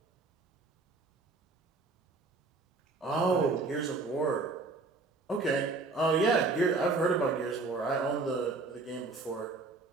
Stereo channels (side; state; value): left; quieter; 3.7 dB